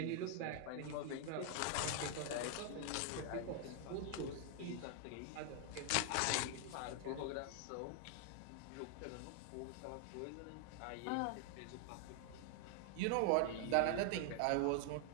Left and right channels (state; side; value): different; both; correlation 0.00